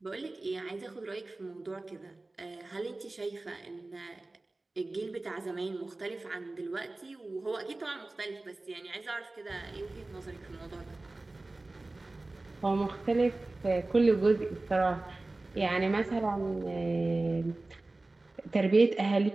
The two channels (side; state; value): left; quieter; 3.0 dB